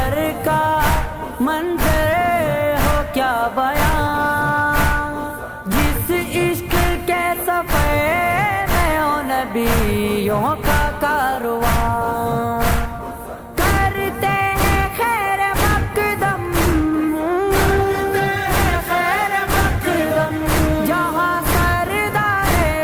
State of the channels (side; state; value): both; identical; correlation 1.00